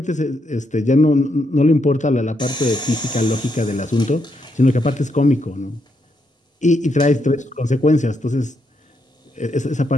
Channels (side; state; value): both; normal; correlation 0.79